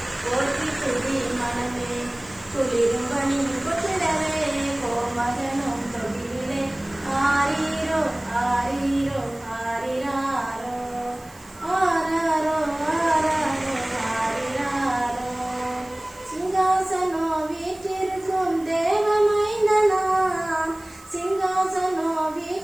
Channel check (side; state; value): right; noise; hiss, 24 dB below the sound